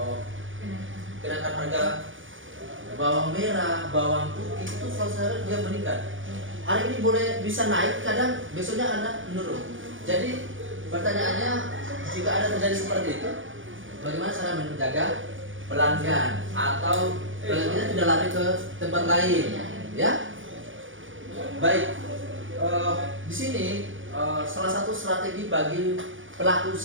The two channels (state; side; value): late; left; 0.57 ms